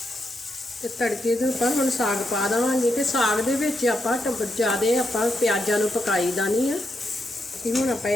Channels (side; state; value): both; normal; correlation 0.82